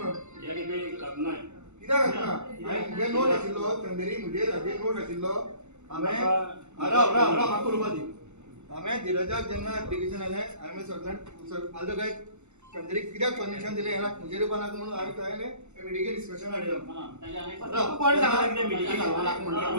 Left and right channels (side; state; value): left; late; 0.83 ms